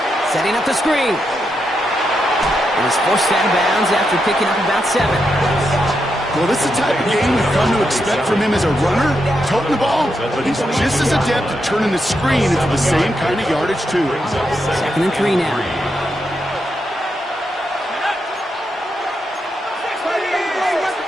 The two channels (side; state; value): both; normal; correlation 0.83